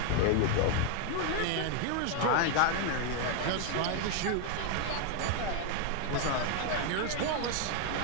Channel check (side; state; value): both; different; correlation 0.00